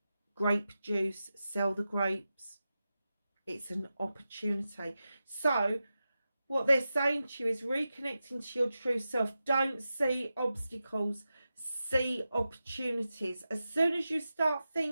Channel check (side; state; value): both; inverted; correlation -0.92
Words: grape juice, sell the grapes. It's an opportunity. So what they're saying to you is reconnecting to your true self. Don't see obstacles, see opportunities. As soon as you start